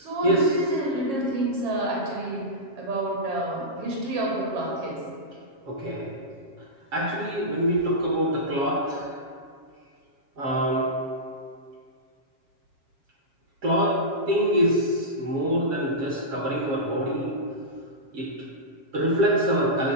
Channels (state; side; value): late; left; 7.3 ms